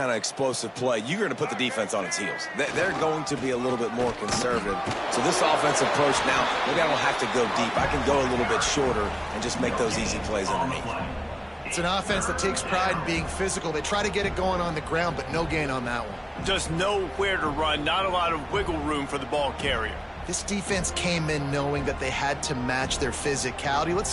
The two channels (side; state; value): both; identical; correlation 1.00